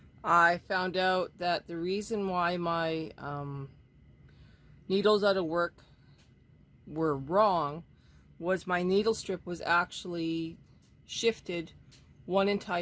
I found out that the reason why my needles out of work were wrong was my needle strip was actually shifted one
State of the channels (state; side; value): identical; both; correlation 1.00